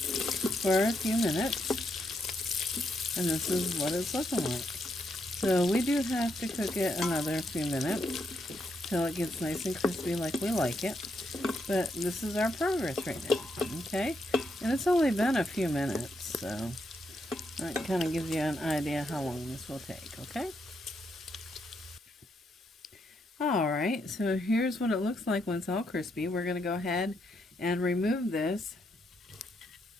a few minutes, and this is what it's looking like. So we do have to cook it another few minutes till it gets nice and crispy like we like it. But this is our progress right now, okay? And it's only been a few minutes, so that kind of gives you an idea how long this will take, okay? Alright, so here's what it looks like when it's all crispy. We're going to go ahead and remove this.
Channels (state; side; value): normal; both; correlation 0.79